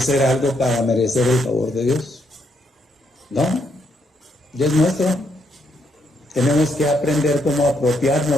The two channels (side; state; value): both; normal; correlation 0.75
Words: algo para merecer el favor de Dios. ¿No? Ya es nuestro. Tenemos que aprender cómo